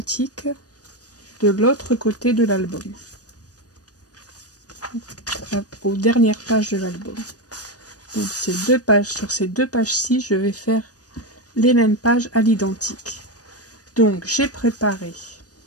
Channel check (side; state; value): right; late; 0.68 ms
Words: de l'autre côté de l'album. Aux dernières pages de l'album. Donc ces deux pages, sur ces deux pages-ci, je vais faire les mêmes pages à l'identique. Donc j'ai préparé,